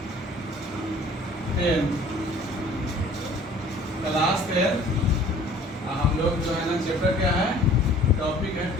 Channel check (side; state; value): both; normal; correlation 0.51